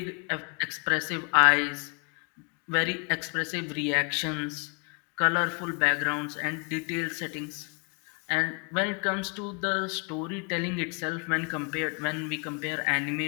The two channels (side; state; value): right; quieter; 37.4 dB